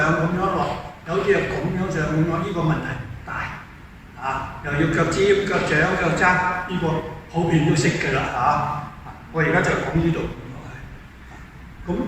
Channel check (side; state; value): both; identical; correlation 1.00